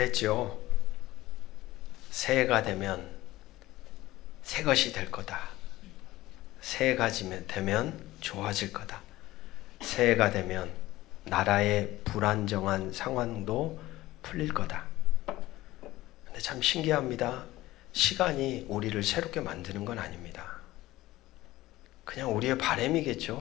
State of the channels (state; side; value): quieter; right; 17.1 dB